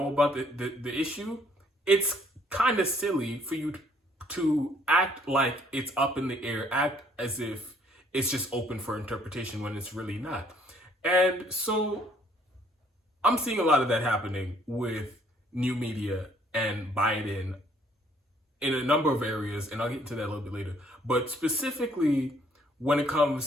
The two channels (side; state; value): both; normal; correlation 0.63